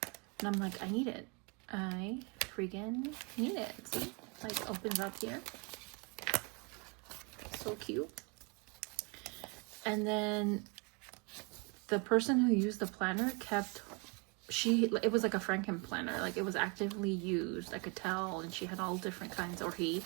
and I'm like, I need it. I freaking need it. See, like opens up here, so cute. And then the person who used the planner kept, it was like a Franken planner, like it was actively used, I could tell, and she had all different kinds, or he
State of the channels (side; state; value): left; quieter; 32.4 dB